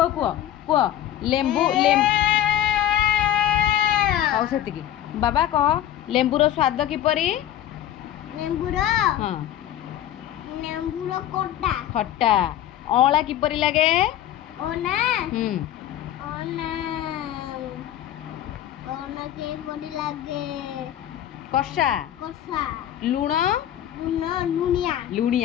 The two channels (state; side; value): quieter; right; 11.7 dB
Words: कुह कुह लेंबू हौ से बाबा कह लेंबूर स्वाद किपरि खट्टा अँला किपरि लागे कषा लुण